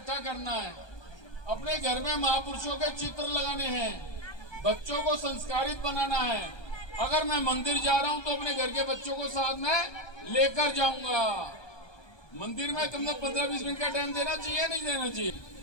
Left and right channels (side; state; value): right; late; 1.2 ms